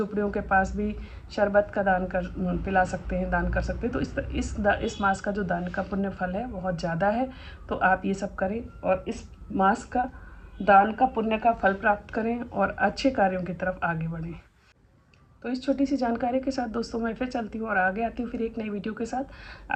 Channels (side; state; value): both; identical; correlation 1.00